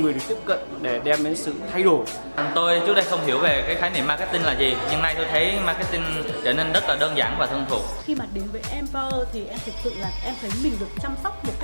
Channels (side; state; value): both; inverted; correlation -1.00